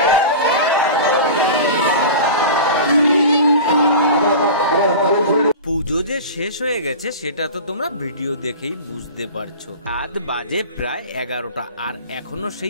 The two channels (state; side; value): inverted; both; correlation -0.33